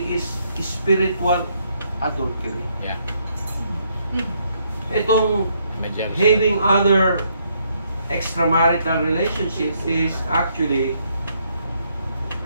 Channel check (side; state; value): both; inverted; correlation -0.73